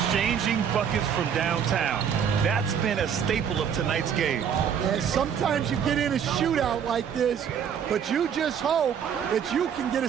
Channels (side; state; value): left; quieter; 7.9 dB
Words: buckets from downtown. That's been a staple of tonight's game. And sometimes you get in a shootout like this, but you just hope that you can get a